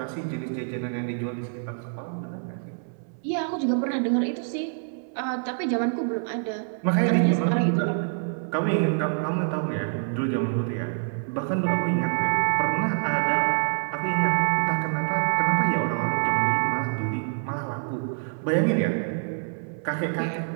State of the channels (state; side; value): silent; left; 61 dB below the other